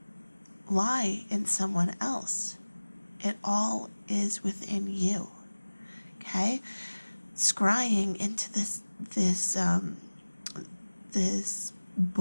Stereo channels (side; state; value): both; inverted; correlation -1.00